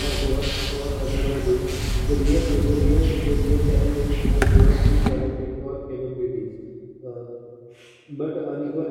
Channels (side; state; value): both; identical; correlation 1.00